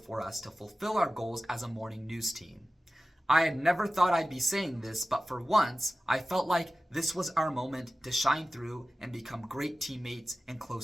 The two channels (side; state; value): both; normal; correlation 0.95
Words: us to fulfill our goals as a morning news team. I had never thought I'd be saying this, but for once, I felt like this was our moment to shine through and become great teammates and